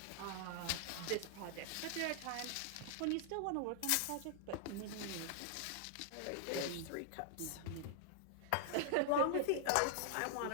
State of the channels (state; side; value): different; both; correlation -0.01